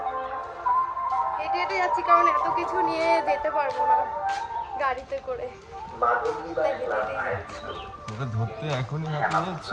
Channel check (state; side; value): identical; both; correlation 1.00